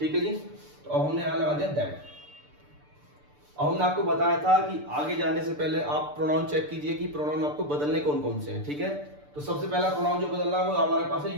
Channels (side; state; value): left; late; 6.8 ms